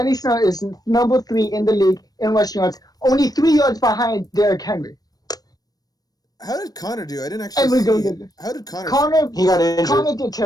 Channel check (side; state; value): right; late; 0.19 ms